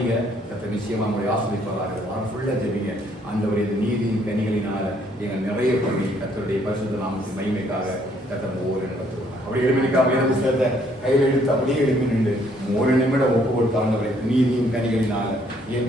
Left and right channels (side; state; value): both; normal; correlation 0.66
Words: கர்த்தர் நிச்சயமா நம்மளை ஆசிரியப்பார்கள். வாரம் ஃபுல்லா ஜெபிங்க. ஆண்டவரே, இந்த நீதியின் கனிகளினால எங்கள் நிறைய பண்ணி கர்த்தருடைய பரிசுத்த நாமத்தின் மகிமைக்காக கர்த்தர் ஒவ்வொரு நடத்துவார். அப்படி எழுப்பினிக்கா வேத புத்தகத்தை கையில் எடுத்து அப்படியே எழுப்பி நின்று 1 நிமிடம் ஒப்பு கொடுத்தாண்டவரை நீதியின் கனிகளினால